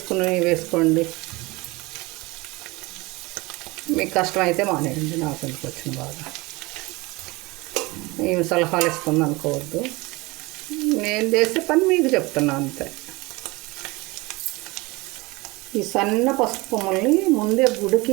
వేసుకోండి. మీకు కష్టమైతే మానేయండి, నాకు ఎందుకు వచ్చిన బాగా. ఏమి సలహాలు ఇస్తుంది అనుకోవద్దు, నేను చేసే పని మీకు చెప్తున్నా అంతే. ఈ సన్న పసుపు కొమ్మల్ని ముందే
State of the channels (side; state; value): left; quieter; 23.3 dB